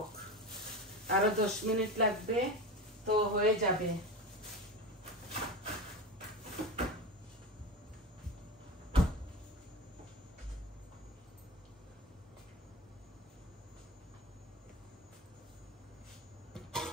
আরো 10 মিনিট লাগবে, তো হয়ে যাবে।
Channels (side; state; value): both; normal; correlation 0.25